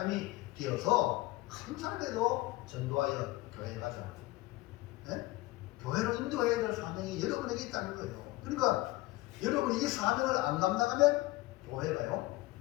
되어서 한 사람에도 전도하여 교회에 가자. 네? 교회로 인도해야 될 사명이 여러분에게 있다는 거예요. 그러니까 여러분이 이 사명을 안 감당하면 교회가요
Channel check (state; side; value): quieter; right; 19.4 dB